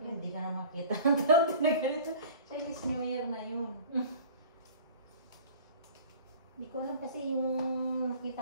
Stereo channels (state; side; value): inverted; both; correlation -0.43